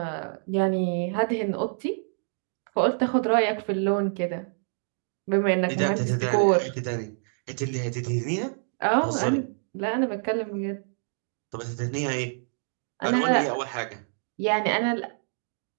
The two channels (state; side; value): silent; left; digital silence